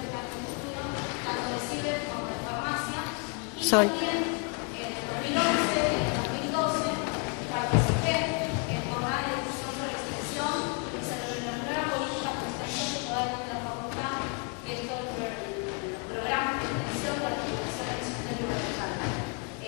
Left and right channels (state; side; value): quieter; right; 35.1 dB